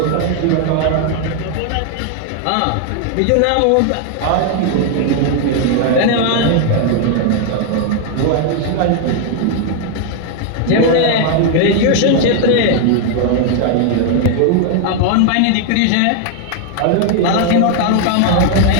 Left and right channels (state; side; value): different; both; correlation 0.00